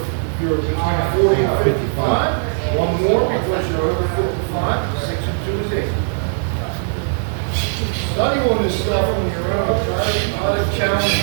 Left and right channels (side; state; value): left; silent; digital silence